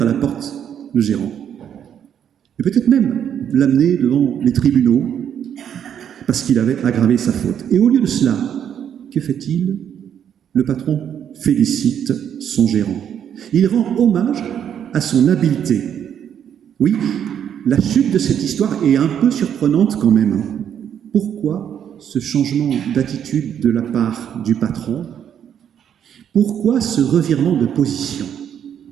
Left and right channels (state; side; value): quieter; left; 9.0 dB